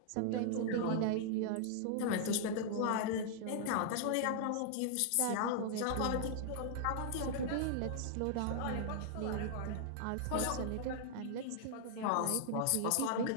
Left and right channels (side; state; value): both; different; correlation -0.01